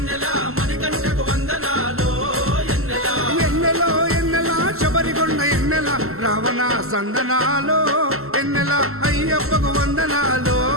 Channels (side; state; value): left; late; 0.63 ms